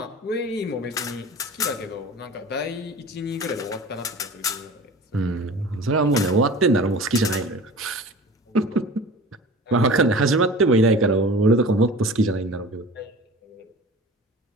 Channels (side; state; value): both; normal; correlation 0.39